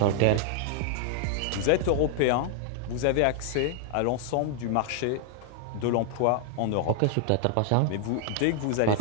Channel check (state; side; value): different; both; correlation 0.00